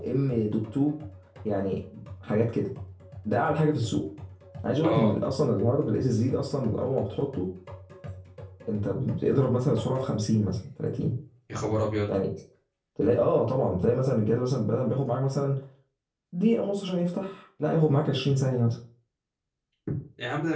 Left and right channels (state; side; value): identical; both; correlation 1.00